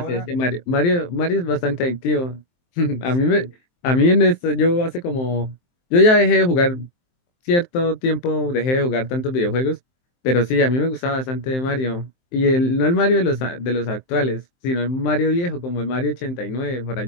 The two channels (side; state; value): right; late; 23 ms